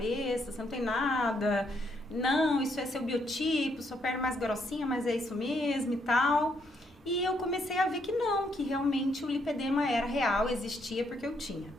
você não tem nada, não, isso é seu biotipo, sua perna é mais grossinha, mas é isso mesmo e tal. E eu comecei a ver que não, que realmente o lipedema era real, existia porque eu tinha.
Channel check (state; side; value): normal; both; correlation 0.74